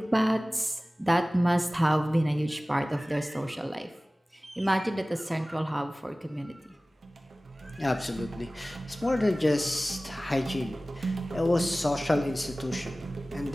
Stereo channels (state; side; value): normal; both; correlation 0.98